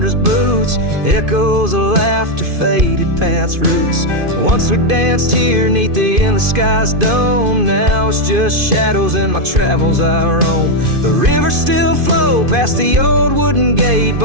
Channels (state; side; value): late; left; 2.5 ms